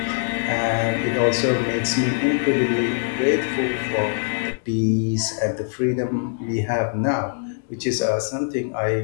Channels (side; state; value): right; silent; digital silence